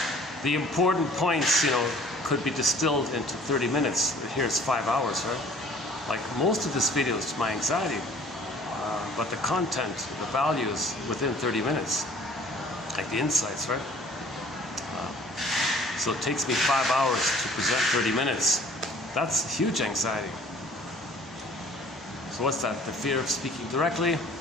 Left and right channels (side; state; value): both; normal; correlation 0.53